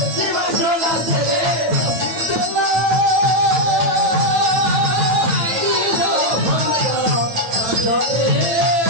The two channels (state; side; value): late; left; 9.0 ms